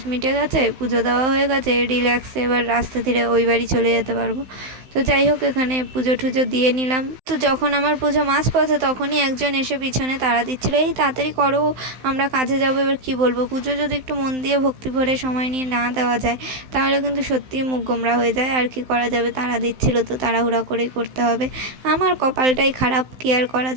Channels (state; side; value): late; left; 15 ms